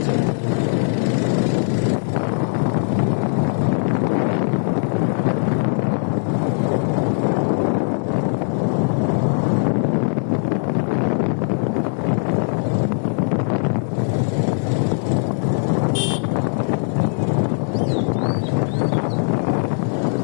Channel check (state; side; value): silent; right; 66 dB below the other